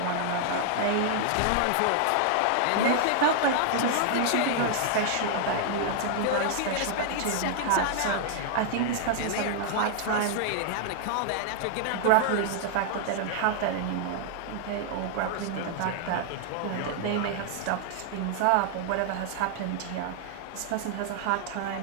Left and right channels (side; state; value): both; different; correlation -0.01